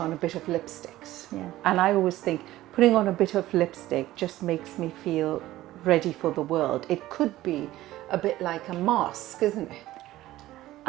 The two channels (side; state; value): left; quieter; 15.7 dB